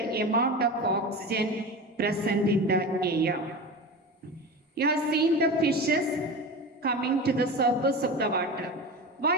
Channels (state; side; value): normal; both; correlation 0.27